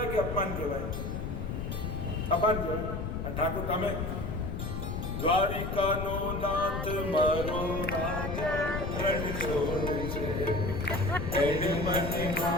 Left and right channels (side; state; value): left; noise; rumble, 4 dB below the sound